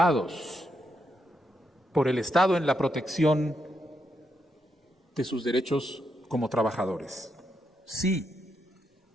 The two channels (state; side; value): normal; both; correlation 0.81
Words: por el Estado en la protección de sus derechos como trabajadores. Sí,